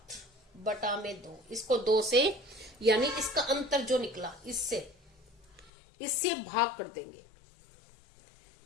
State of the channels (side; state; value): right; drops out; at 5.7 s